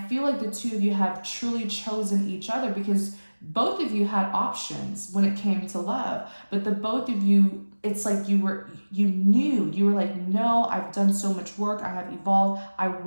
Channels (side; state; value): both; inverted; correlation -1.00